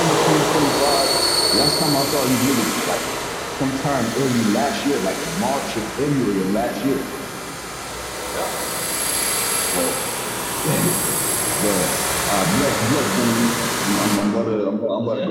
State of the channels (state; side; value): identical; both; correlation 1.00